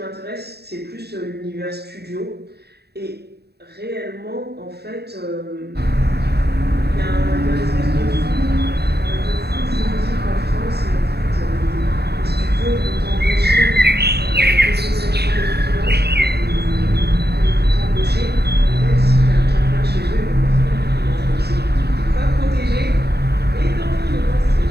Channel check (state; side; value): late; left; 0.47 ms